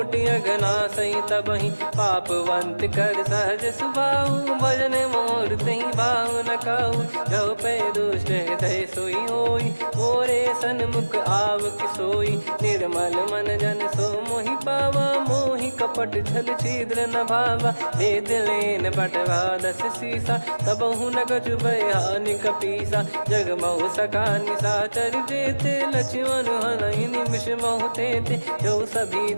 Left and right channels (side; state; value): both; inverted; correlation -1.00